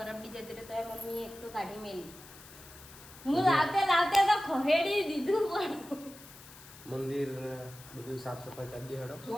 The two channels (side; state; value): left; noise; hiss, 18 dB below the sound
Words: બી જતી રહી તો મમ્મી એક તો કાઢી મેલી. હું લાવતે લાવતે તો ખહેડી દીધું પણ મંદિર ને બધું સાફ સફાઈ કરી દે હેડો.